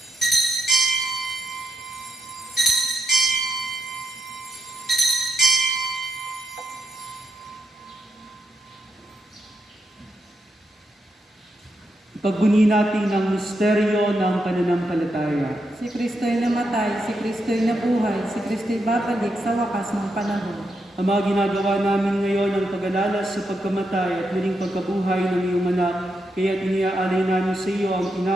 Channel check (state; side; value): normal; both; correlation 0.83